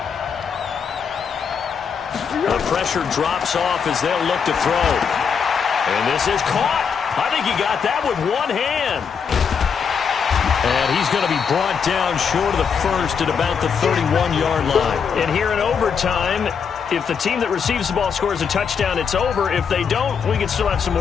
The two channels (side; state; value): right; quieter; 6.6 dB